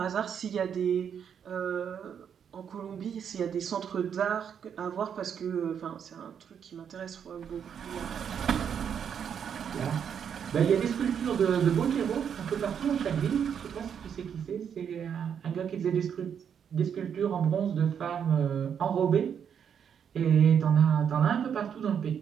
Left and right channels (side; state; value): left; quieter; 7.9 dB